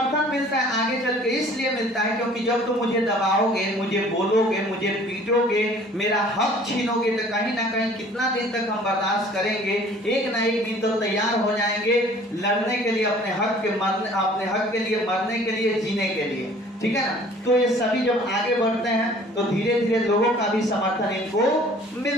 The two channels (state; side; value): normal; both; correlation 0.52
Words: मिलता है आगे चल के, इसलिए मिलता है क्योंकि जब तुम मुझे दबाओगे, मुझे बोलोगे, मुझे पीटोगे, मेरा हक छीनोगे, तो कहीं ना कहीं कितना दिन तक हम बर्दाश्त करेंगे, एक ना एक दिन तो तैयार हो जाएंगे लड़ने के लिए, अपने हक के लिए, मरने के लिए, जीने के लिए, ठीक है ना। तो ये सभी जब आगे बढ़ते हैं तो धीरे धीरे लोगों का भी समर्थन इनको